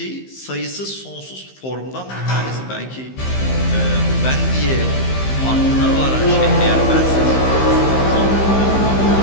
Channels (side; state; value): right; late; 15 ms